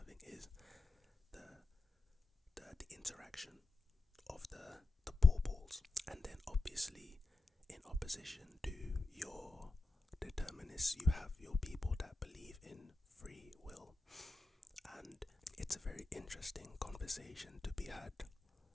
is the interaction of the ball balls. And then obviously, in opposition to your determinists, you have your people that believe in free will. And it's a very interesting conversation to be had,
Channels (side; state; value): right; quieter; 3.2 dB